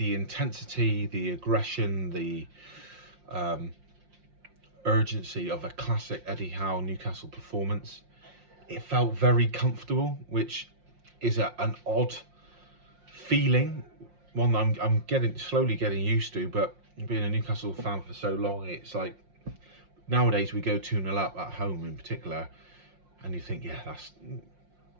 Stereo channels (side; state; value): left; late; 5.6 ms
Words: intensity, the aggression, the urgency of a classic Eddie Howe Newcastle performance. It felt very comfortable, which is an odd feeling, one that I'm slowly getting used to. But being a Newcastle fan for so long, it's like nowadays we go 2-0 up at home in particular, and you think, yeah, that's